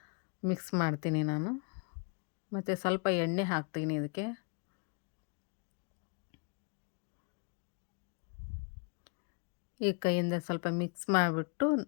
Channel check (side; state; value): right; quieter; 36.3 dB